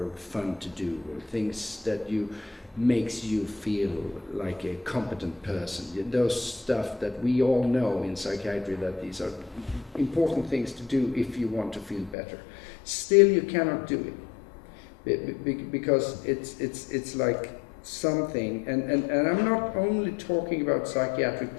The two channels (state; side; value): drops out; right; at 12.2 s